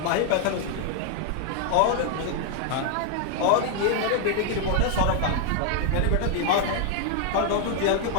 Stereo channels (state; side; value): different; both; correlation 0.00